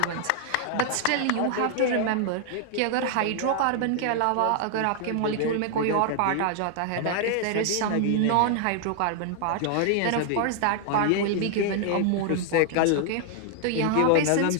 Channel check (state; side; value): different; both; correlation 0.00